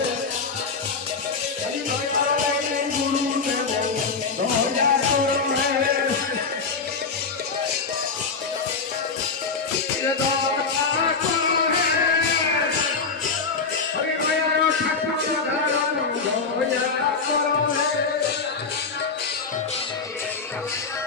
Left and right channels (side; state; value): right; quieter; 4.8 dB